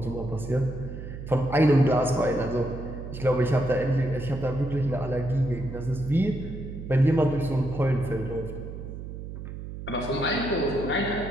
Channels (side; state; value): right; noise; hum, 9 dB below the sound